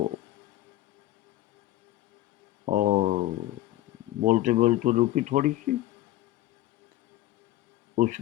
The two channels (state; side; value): quieter; right; 15.0 dB